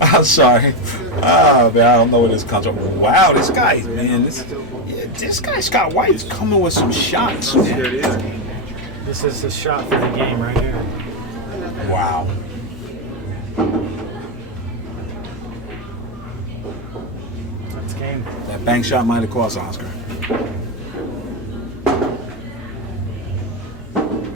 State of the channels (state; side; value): normal; both; correlation 0.07